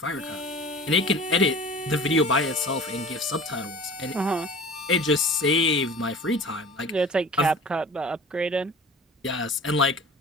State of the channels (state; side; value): normal; both; correlation 0.40